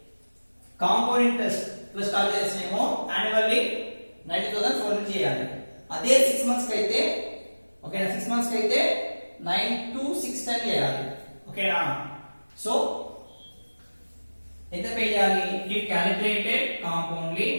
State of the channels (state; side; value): inverted; both; correlation -1.00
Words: compound interest plus calculation ఏమో annually 90,000 చేయాలి. అదే 6 months కి అయితే ఓకేనా 6 months కి అయితే 9,2,6,10 చేయాలి. ఓకేనా. సో ఎంత పే చేయాలి?